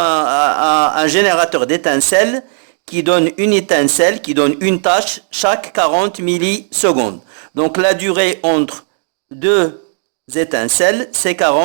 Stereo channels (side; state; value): left; silent; digital silence